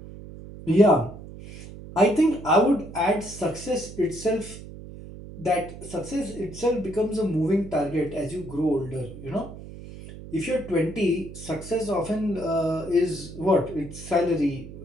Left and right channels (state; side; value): noise; right; hum, 14 dB below the sound